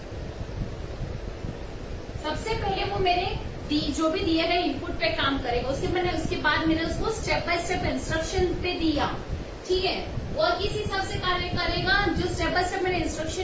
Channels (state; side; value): identical; both; correlation 1.00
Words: सबसे पहले वो मेरे जो भी दिए गए इनपुट पे काम करेगा, उसके बाद मैंने उसको स्टेप बाय स्टेप इंस्ट्रक्शन पे दिया, ठीक है, और किस हिसाब से कार्य करेगा? जो स्टेप बाय स्टेप मैंने